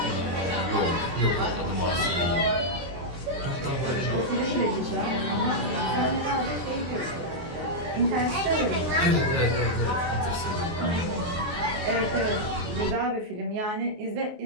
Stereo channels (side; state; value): left; late; 23 ms